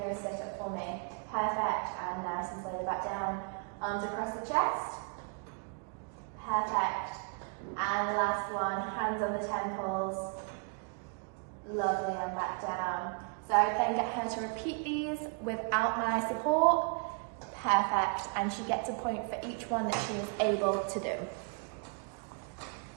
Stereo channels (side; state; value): left; quieter; 39.1 dB